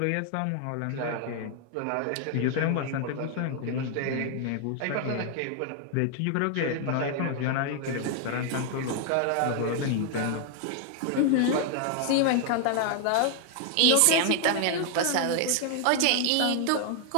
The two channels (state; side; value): different; both; correlation 0.00